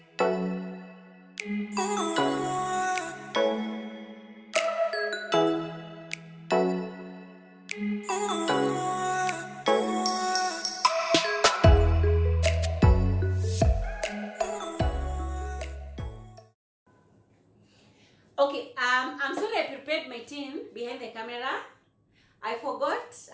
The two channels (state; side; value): identical; both; correlation 1.00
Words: Okay, I'm sorry I prepared my tin behind the camera. I forgot,